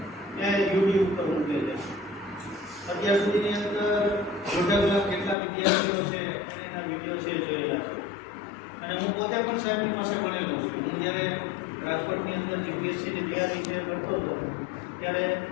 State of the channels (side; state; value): right; drops out; at 5.4 s